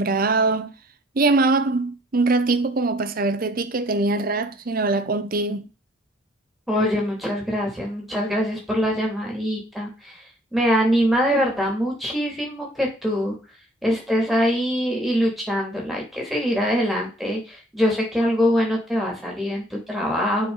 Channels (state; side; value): normal; both; correlation 0.58